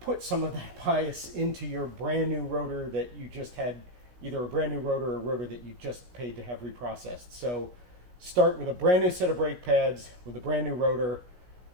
some of that bias into your brand new rotor that you just had, either a brand new rotor or a rotor that you just paid to have reprocessed. So start with a brand new set of brake pads with a brand new rotor,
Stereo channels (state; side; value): late; left; 16 ms